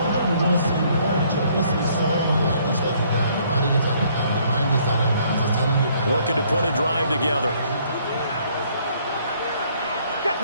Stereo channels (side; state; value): both; inverted; correlation -0.64